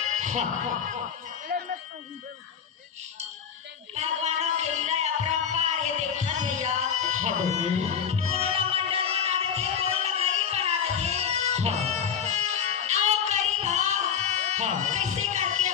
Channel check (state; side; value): quieter; right; 7.6 dB